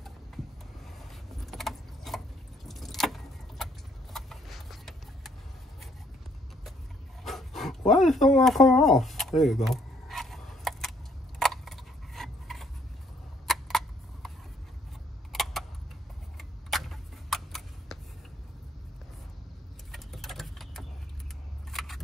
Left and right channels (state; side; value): normal; both; correlation 0.66